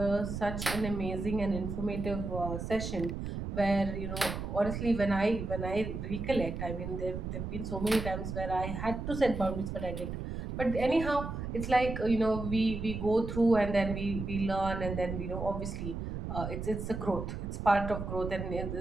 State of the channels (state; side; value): noise; right; rumble, 5 dB below the sound